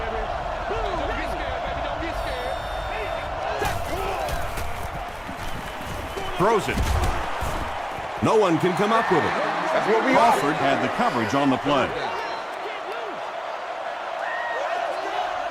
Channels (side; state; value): both; identical; correlation 1.00